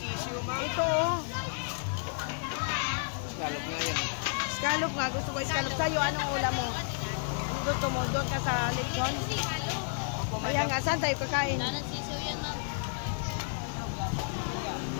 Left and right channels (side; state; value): right; silent; digital silence